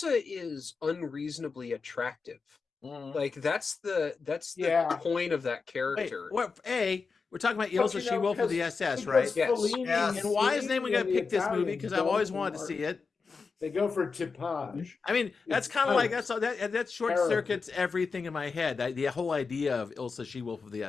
is unreasonably attractive. Like that's the point of that character. We're talking about Ilsa She-Wolf of the SS, right? Yes. And why is we got to pick this movie? Because I've always wanted to see it. They go for tipage. I mean, that's kind of like that short circuits everything in my head. The whole idea of Ilsa She-Wolf of the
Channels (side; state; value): right; quieter; 4.8 dB